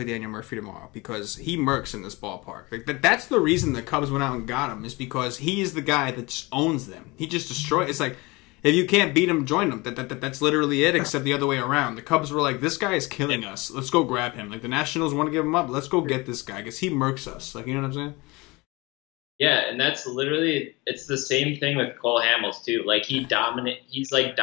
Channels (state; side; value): quieter; right; 24.1 dB